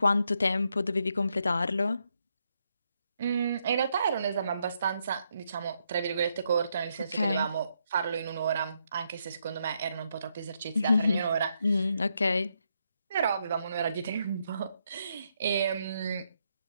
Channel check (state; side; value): inverted; both; correlation -0.79